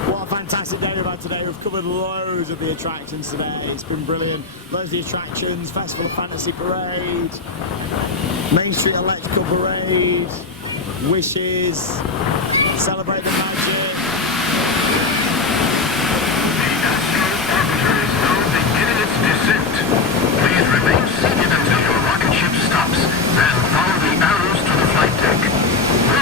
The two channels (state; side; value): quieter; right; 4.2 dB